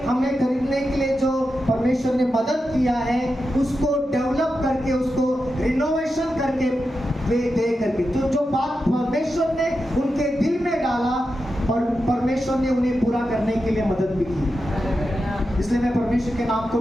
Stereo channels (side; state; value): both; normal; correlation 0.89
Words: हमें खरीदने के लिए जो परमेश्वर ने मदद किया है, उसको डेवलप करके, उसको रिनोवेशन करके दे करके, तो जो बात परमेश्वर ने उनके दिल में डाला और परमेश्वर ने उन्हें पूरा करने के लिए मदद भी की। इसलिए मैं परमेश्वर के नाम को